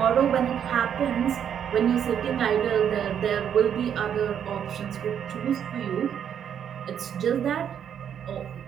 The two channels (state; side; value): quieter; left; 8.7 dB